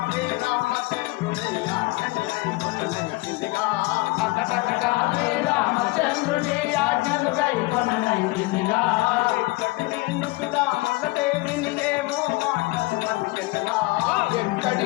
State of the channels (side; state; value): right; quieter; 22.4 dB